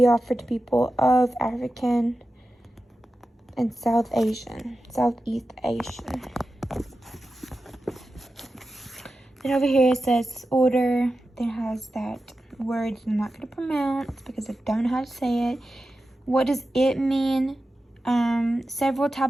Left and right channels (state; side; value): normal; both; correlation 0.92